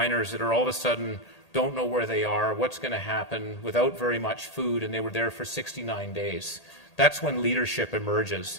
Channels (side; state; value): right; late; 1.8 ms